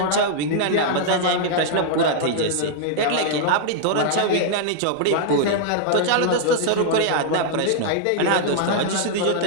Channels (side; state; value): both; different; correlation -0.01